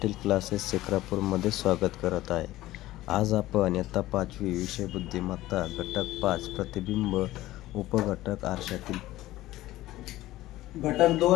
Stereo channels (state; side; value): quieter; right; 16.3 dB